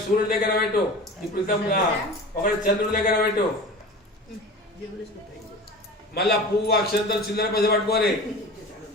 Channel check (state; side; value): normal; both; correlation 0.35